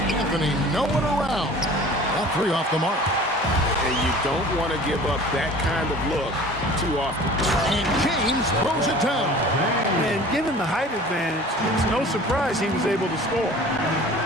Anthony nowhere around. That three off the mark. And you don't want to give up that kind of look too often. And James throws it down. And given the height advantage, it's no surprise he was able to score.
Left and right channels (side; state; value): both; normal; correlation 0.44